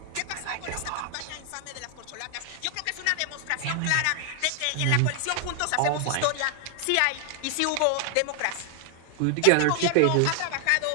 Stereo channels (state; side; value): different; both; correlation 0.00